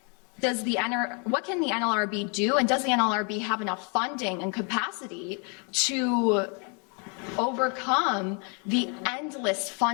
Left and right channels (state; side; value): quieter; right; 36.2 dB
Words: can the NLRB do, and does the NLRB have enough funding and capacity to overcome the endless